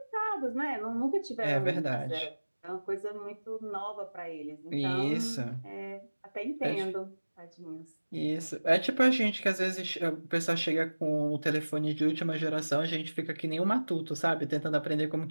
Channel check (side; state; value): both; inverted; correlation -1.00